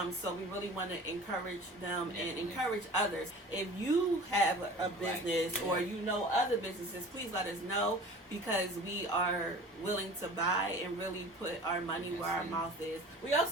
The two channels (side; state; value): both; normal; correlation 0.41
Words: So we really want to encourage them and encourage others. If you have a business or you know other businesses, please let us know, because we are willing to buy and really put our money where our mouth is. We